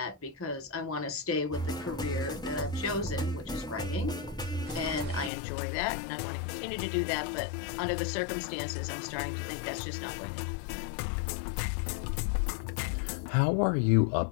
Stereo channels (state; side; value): drops out; right; at 5.3 s